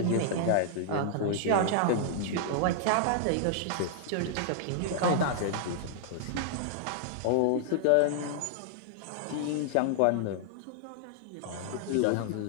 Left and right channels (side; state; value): both; different; correlation -0.01